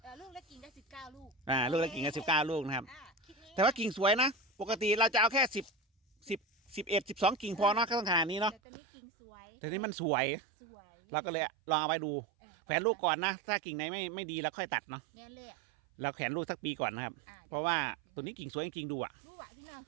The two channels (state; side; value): drops out; left; at 8.6 s